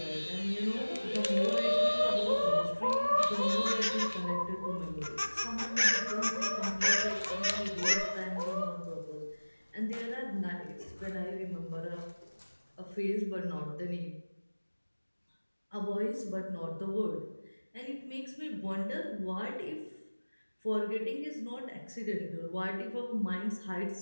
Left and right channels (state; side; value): inverted; both; correlation -1.00